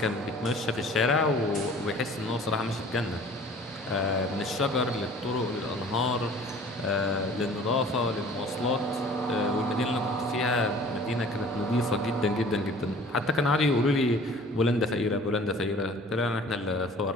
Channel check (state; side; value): normal; both; correlation 0.48